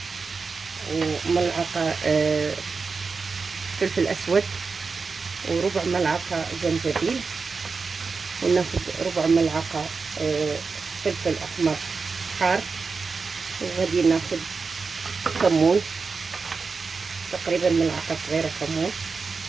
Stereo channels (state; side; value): quieter; left; 4.7 dB